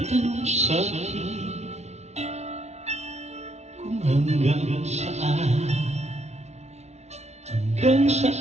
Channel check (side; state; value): left; late; 0.32 ms